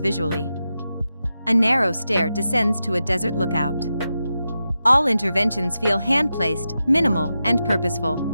A narrow stair descends to a desert lookout. All interventions feel hand-placed, minimal, and purposeful.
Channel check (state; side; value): inverted; both; correlation -0.90